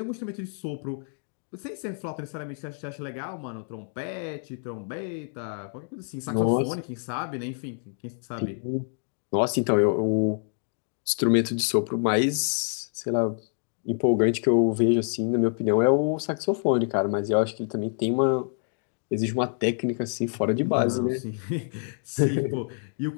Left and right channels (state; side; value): silent; right; 60 dB below the other